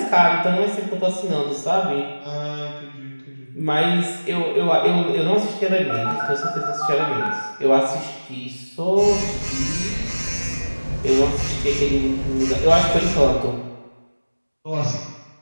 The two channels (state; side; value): inverted; both; correlation -1.00